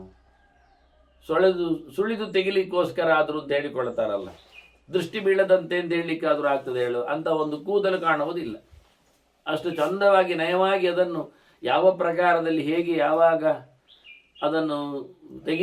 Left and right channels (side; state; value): both; identical; correlation 1.00